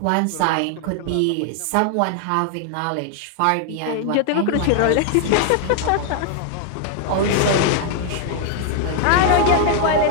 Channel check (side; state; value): both; different; correlation 0.00